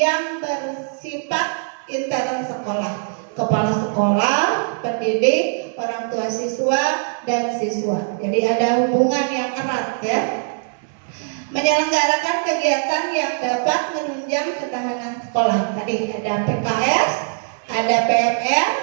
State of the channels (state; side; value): silent; left; 64 dB below the other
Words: bersifat intern sekolah. Kepala sekolah, pendidik, orang tua siswa dan siswa. Jadi ada hubungan yang erat ya. Menyelenggarakan kegiatan yang dapat menunjang ketahanan sekolah. Tadi ada PKS, ada PMR,